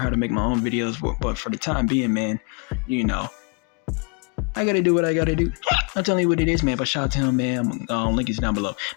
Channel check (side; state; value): right; quieter; 34.9 dB